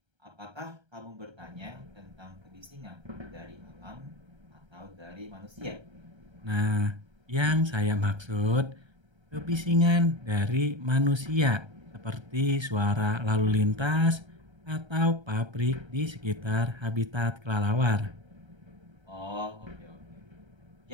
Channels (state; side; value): late; left; 1.3 ms